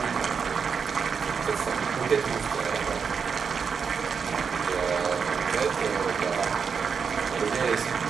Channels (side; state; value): left; quieter; 6.1 dB